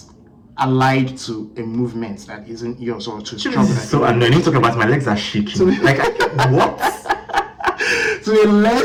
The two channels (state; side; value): identical; both; correlation 1.00